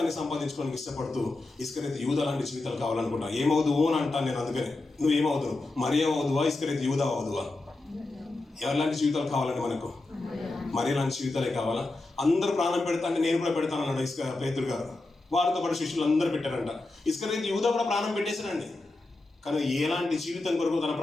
సంపాదించుకోవడానికి ఇష్టపడుతూ ఇస్కరియోతు యూదా లాంటి జీవితాలు కావాలనుకుంటా? ఏమవుదువు అని అంటాను నేను. అందుకని నువ్వు ఏమవుదువు? మరియా అవుదువా, ఇస్కరియోతు యూదా అవుదువా? ఎవరిలాంటి జీవితాలు కావాలండి మనకు? మరియా లాంటి జీవితాలే కావాలా? అందరూ ప్రాణం పెడతాను, నేను కూడా పెడతాను అన్నాడు పేతురు గారు. వారితో పాటు శిష్యులు అందరూ పెట్టారంట. ఇస్కరియోతు యూదా కూడా ప్రాణం పెట్టేశారండి. కానీ ఎలాంటి జీవితం కొరకు తన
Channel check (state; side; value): quieter; right; 3.1 dB